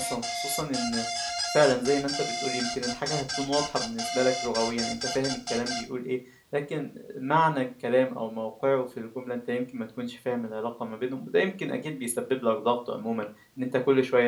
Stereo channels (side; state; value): both; identical; correlation 1.00